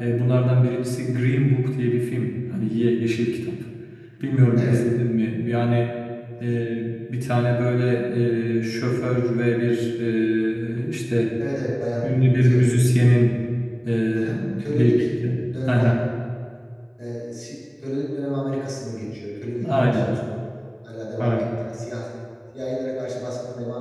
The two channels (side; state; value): both; identical; correlation 1.00